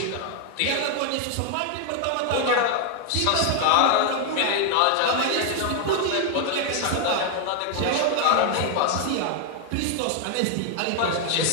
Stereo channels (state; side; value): different; both; correlation 0.00